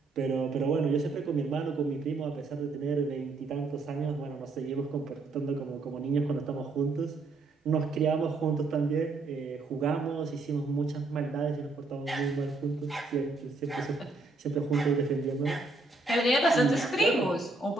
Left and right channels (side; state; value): left; quieter; 3.5 dB